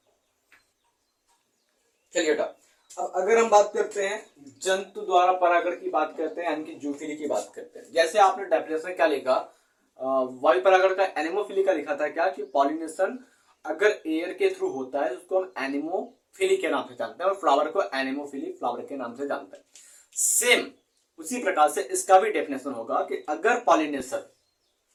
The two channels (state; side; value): identical; both; correlation 1.00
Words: चलिए बेटा, अब अगर हम बात करते हैं जंतु द्वारा परागण की बात करते हैं, यानी कि जूफिली की बात करते हैं। जैसे आपने डेफिनेशन क्या लिखा, वायु परागण का एनिमोफिली का लिखा था क्या कि पॉलिनेशन अगर एयर के थ्रू होता है उसको हम एनिमोफिली के नाम से जानते हैं और फ्लावर को एनिमोफिली फ्लावर के नाम से जानते हैं। सेम उसी प्रकार से इसका भी डेफिनेशन होगा कि अगर पॉलिनेशन